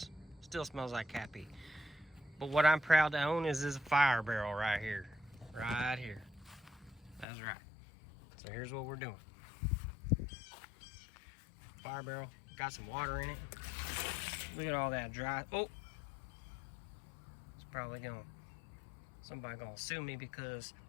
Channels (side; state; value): right; drops out; at 7.2 s